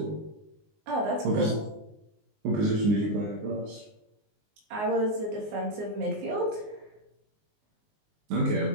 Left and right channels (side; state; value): left; late; 19 ms